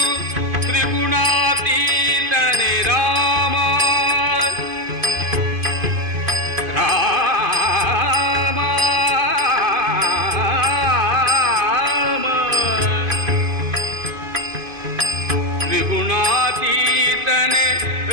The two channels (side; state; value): left; late; 2.5 ms